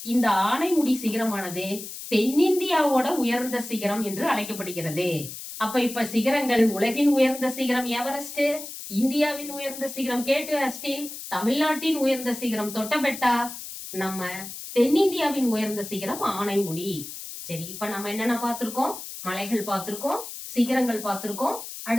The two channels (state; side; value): noise; left; hiss, 10 dB below the sound